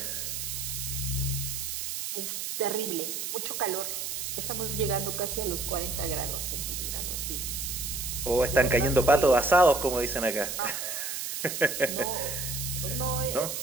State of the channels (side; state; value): right; noise; hiss, 4 dB below the sound